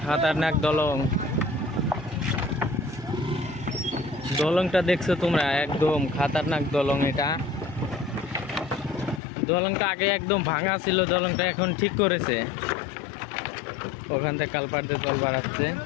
খাতারনাক দলং, দলংটা দেখছো তোমরা, একদম খাতারনাক দলং। এটা দলংটা আগে একদম ভাঙা ছিল, দলংটা এখন ঠিক করেছে। ওখান থেকে কালপার দিয়ে জল বাড়াচ্ছে।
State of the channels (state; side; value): drops out; right; at 9.2 s